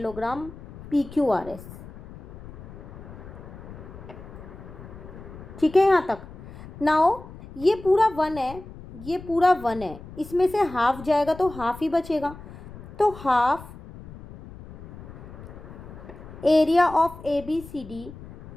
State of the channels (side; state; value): left; noise; rumble, 16 dB below the sound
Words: P Q R S, ठीक है यहाँ तक। नाउ ये पूरा 1 है, ये पूरा 1 है, इसमें से हाफ जाएगा तो हाफ ही बचेगा, तो half area of A B C D